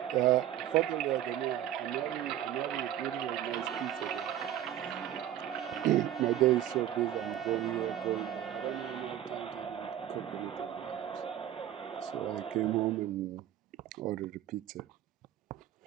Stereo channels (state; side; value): quieter; left; 11.5 dB